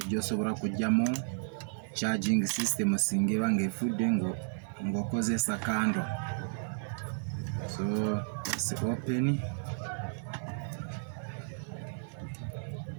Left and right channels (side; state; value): left; silent; digital silence